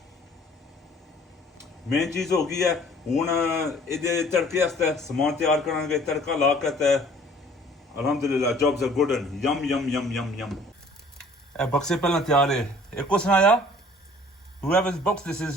Main चीज हो गई है. हुन इहदे तड़के आस्ते समान तैयार करांगे. तड़का ला के Alhamdulillah, jobs are good and yum yum yum yum yum. बक्से पहले तैयार है. एक को सुनाया. Whoever's box this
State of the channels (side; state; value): both; normal; correlation 0.53